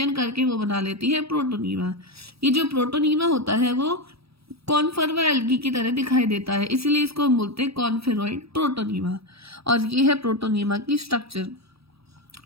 करके वो बना लेती है प्रोटोनीमा। ये जो प्रोटोनीमा होता है वो कॉन्फर्वा एल्गी की तरह दिखाई देता है, इसीलिए इसको हम बोलते हैं कॉन्फेरॉइड प्रोटोनीमा। और ये है प्रोटोनीमा की स्ट्रक्चर।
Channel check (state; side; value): late; left; 0.77 ms